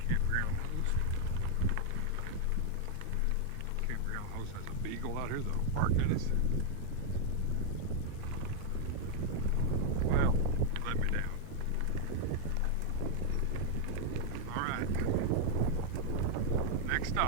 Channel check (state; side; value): different; both; correlation 0.00